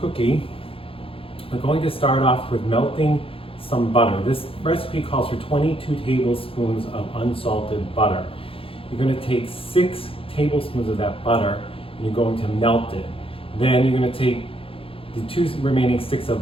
we're going to start off with melting some butter. This recipe calls for 22 tablespoons of unsalted butter. You're going to take 6 tablespoons of that butter and you're going to melt it. Then you're going to take the 2 remaining sticks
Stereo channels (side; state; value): right; late; 0.27 ms